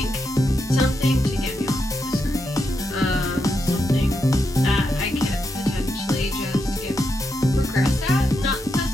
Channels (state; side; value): normal; both; correlation 0.84